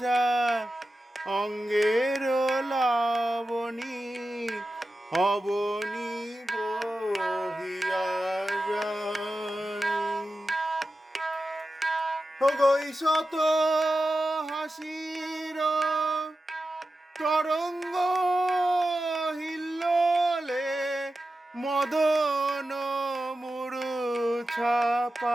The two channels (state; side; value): normal; both; correlation 0.92